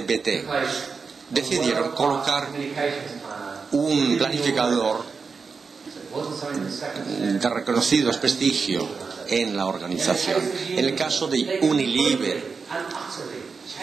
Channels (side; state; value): left; quieter; 5.0 dB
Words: BT, decidieron colocar un planificador de reconocido prestigio en la organización. En el caso de Unilever,